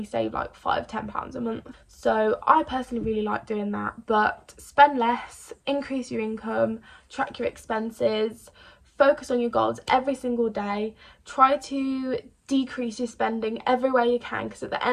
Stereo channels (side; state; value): both; identical; correlation 1.00